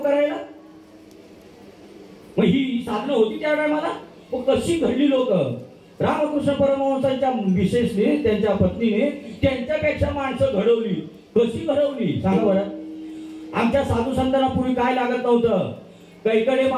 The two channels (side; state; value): both; identical; correlation 1.00